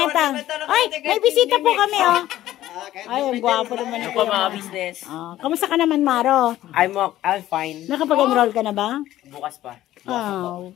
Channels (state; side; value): quieter; right; 14.0 dB